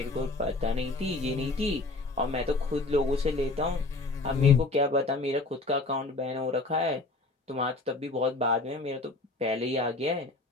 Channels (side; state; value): right; quieter; 3.3 dB